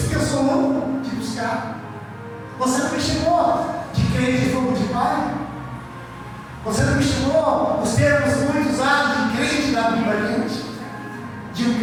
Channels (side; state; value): both; identical; correlation 1.00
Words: que eu sou louco de buscar. Você não me chamou de crente de fogo de pai? Você não me chamou os termos muito usados de crente da Bíblia crente? De um